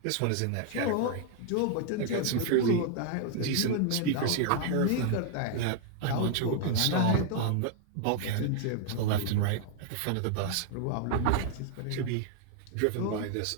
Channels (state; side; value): different; both; correlation 0.00